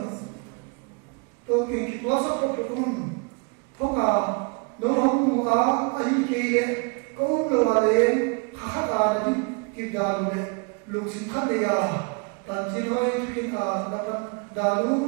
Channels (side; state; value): left; quieter; 32.8 dB